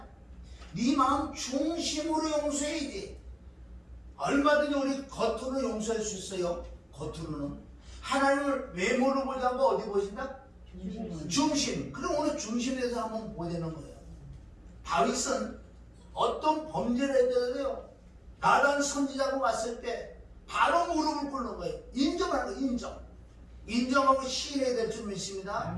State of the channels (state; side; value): identical; both; correlation 1.00